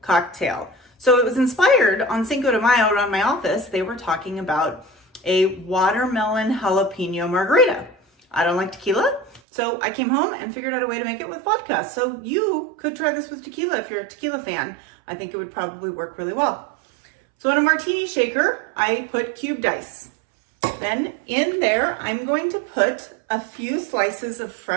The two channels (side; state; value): left; drops out; at 9.4 s